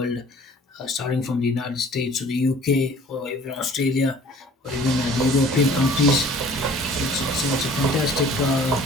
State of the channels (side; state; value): both; normal; correlation 0.50